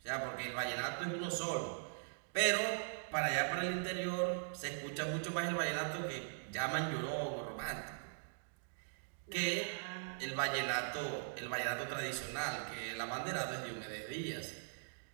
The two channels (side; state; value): left; silent; digital silence